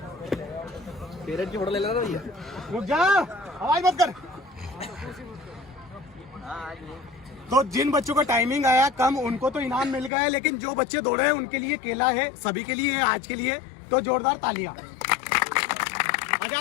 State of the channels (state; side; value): drops out; right; at 10.1 s